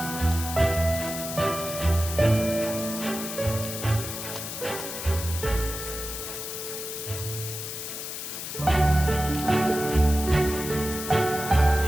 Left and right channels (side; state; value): left; noise; hiss, 7 dB below the sound